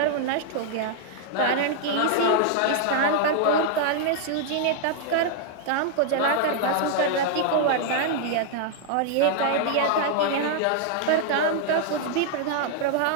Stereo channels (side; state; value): both; different; correlation -0.01